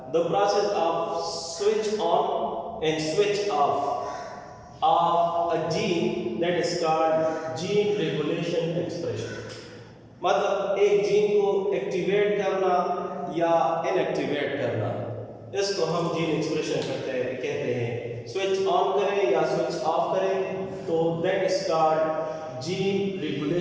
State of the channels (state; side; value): identical; both; correlation 1.00